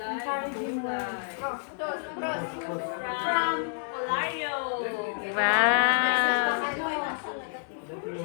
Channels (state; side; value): silent; right; digital silence